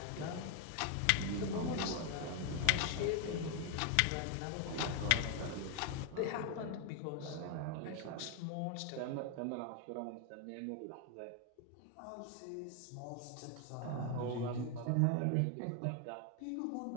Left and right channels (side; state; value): both; different; correlation 0.01